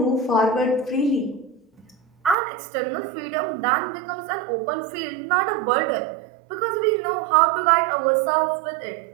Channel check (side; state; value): left; drops out; at 2.4 s